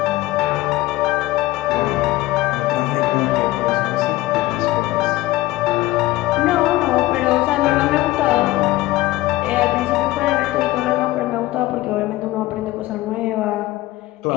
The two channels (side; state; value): right; quieter; 17.4 dB